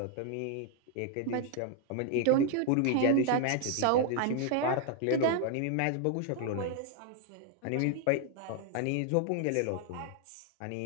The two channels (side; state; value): both; different; correlation 0.00